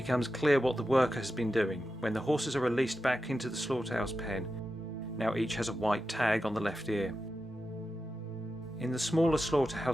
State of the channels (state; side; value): normal; both; correlation 0.91